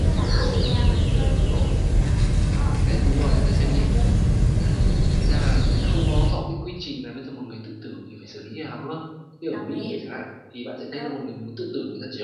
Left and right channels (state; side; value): identical; both; correlation 1.00